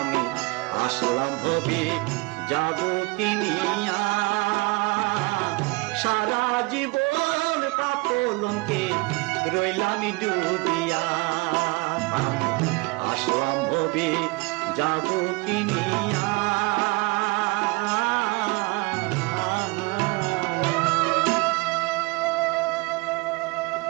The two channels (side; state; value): left; quieter; 26.1 dB